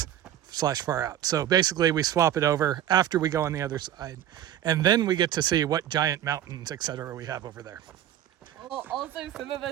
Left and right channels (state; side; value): quieter; left; 11.3 dB